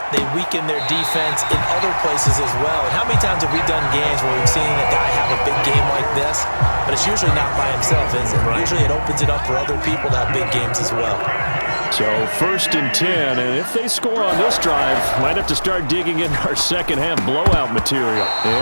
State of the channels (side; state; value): both; inverted; correlation -1.00